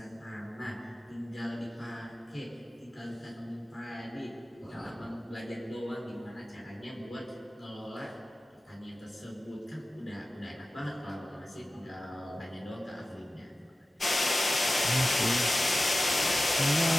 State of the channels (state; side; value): normal; both; correlation 0.96